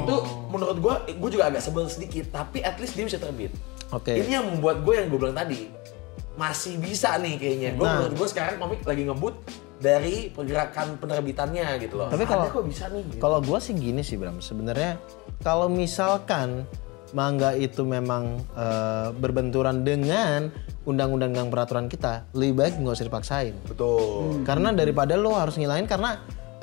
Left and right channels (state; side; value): quieter; right; 25.4 dB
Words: menurut gue juga agak sebel sedikit, tapi at least dia bisa terbit. Oke. Ini yang membuat gue yang gue bilang tadi, masih bisa nih kayaknya. Menurut gue sekarang komik lagi ngebut dari pergerakan penerbitannya gitu loh. Tapi kalau Ada kok bisa nih. Gitu. Kalau gua sih gini sih Bram, sebenarnya kalau misalkan manga itu memang berbenturan dengan undang-undang dan peraturan kita, lebih baik nggak usah dipaksain. Betul. Karena daripada lo harus ngilain karena